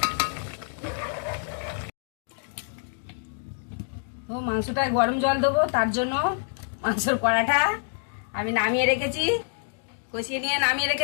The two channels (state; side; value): silent; right; digital silence